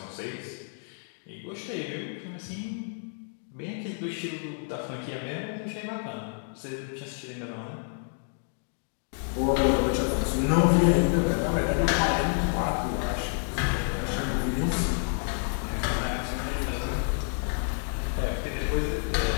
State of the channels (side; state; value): right; silent; 59 dB below the other